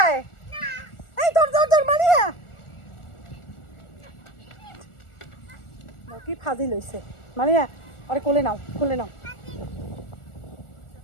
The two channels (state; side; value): late; right; 1.4 ms